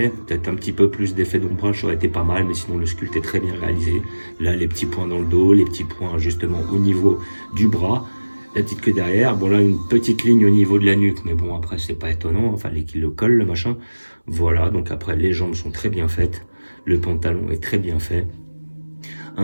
peut-être un petit peu plus d'effet d'ombrage, ça aurait été pas mal, mais sinon le sculpte est très bien réalisé. Là, les petits points dans le dos, les petits points justement au niveau du bras, la petite queue derrière. Bon, là, une petite ligne au niveau de la nuque, mais bon, après, c'est pas étonnant, enfin, qu'il le colle, le machin. Voilà, donc après, les jambes sont très bien faites, le pantalon est très bien fait.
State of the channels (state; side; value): inverted; both; correlation -1.00